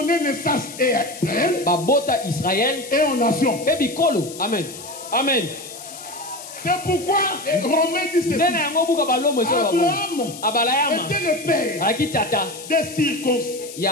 naissance à Israël et aux nations. Amen. Amen. C'est pourquoi Romain dit ceci. Abraham était le père des circoncis et des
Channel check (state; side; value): noise; left; hiss, 14 dB below the sound